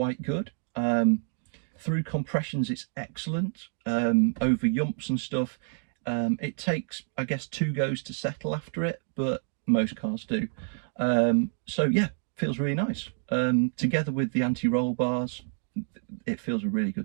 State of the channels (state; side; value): silent; left; 58 dB below the other